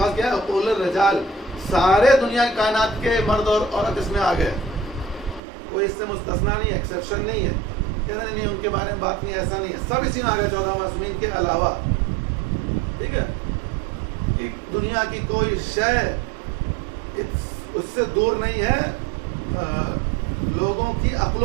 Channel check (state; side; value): drops out; left; at 5.4 s